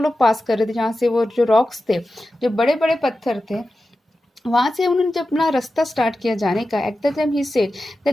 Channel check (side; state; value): both; normal; correlation 0.93